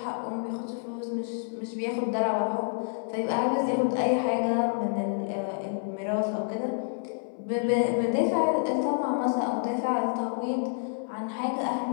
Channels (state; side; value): silent; right; 59 dB below the other